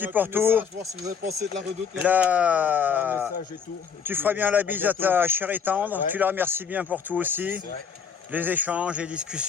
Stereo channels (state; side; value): quieter; right; 6.7 dB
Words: pour tout. Voir si vous avez pensé de la redoute. Là, Et tout. tu feras bien la bise à ta chère et tendre. Ouais. Tu la remercies bien pour tout aussi. Ouais. Les échanges, les